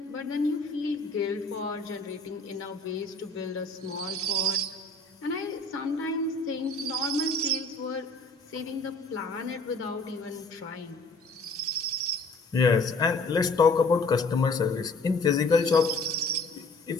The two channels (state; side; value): quieter; right; 3.1 dB